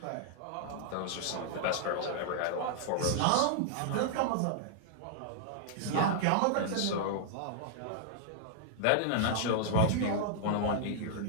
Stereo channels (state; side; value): different; both; correlation -0.01